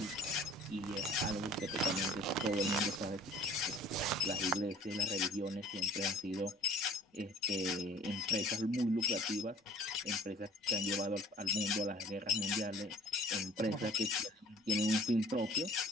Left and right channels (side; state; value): both; normal; correlation 0.51